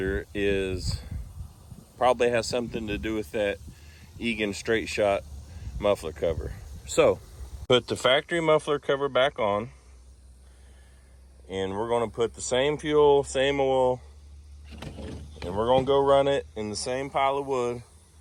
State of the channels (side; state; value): both; identical; correlation 1.00